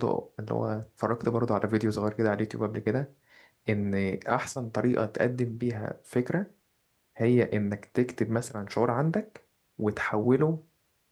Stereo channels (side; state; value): both; identical; correlation 1.00